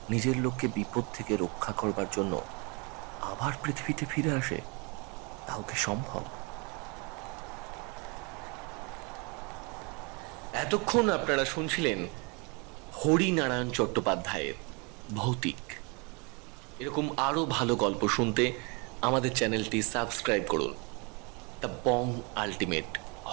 নিজের লোককে বিপদ থেকে রক্ষা করবার জন্য আবার পৃথিবীতে ফিরে আসে, তাও কি সম্ভব? এতক্ষণ আপনারা শুনছিলেন হরিনারায়ণ চট্টোপাধ্যায়ের ভৌতিক। এরকম আরো ভালো গল্প শুনতে আমাদের চ্যানেলটি সাবস্ক্রাইব করুন। The Bong ultimate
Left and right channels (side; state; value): left; quieter; 31.3 dB